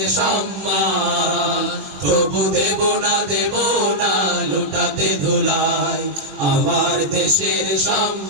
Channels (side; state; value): left; late; 21 ms